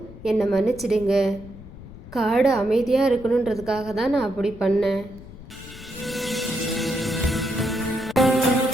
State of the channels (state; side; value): noise; left; rumble, 16 dB below the sound